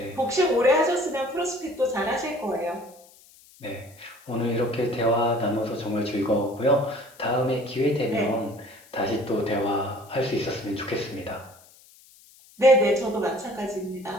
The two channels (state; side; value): noise; left; hiss, 26 dB below the sound